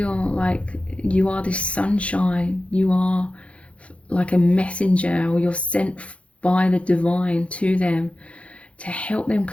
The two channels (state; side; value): late; right; 0.062 ms